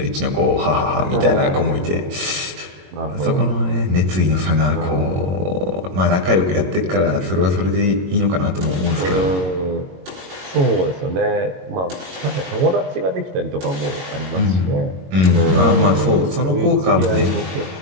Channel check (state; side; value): late; left; 22 ms